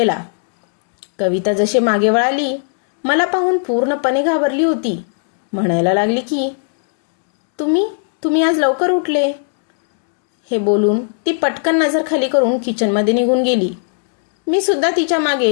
कविता जशी मागे वळाली मला पाहून पूर्णपणे घाबरली होती. म्हणायला लागली की तुम्ही आज लवकर उठले. हे बोलून ती पटकन नजर खाली करून किचनमध्ये निघून गेली. मी सुद्धा तिच्या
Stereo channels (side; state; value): right; silent; 69 dB below the other